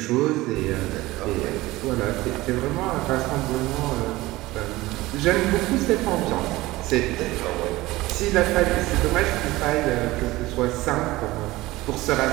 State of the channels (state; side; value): quieter; left; 18.9 dB